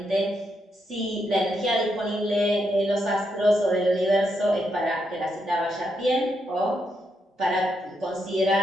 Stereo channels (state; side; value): normal; both; correlation 0.80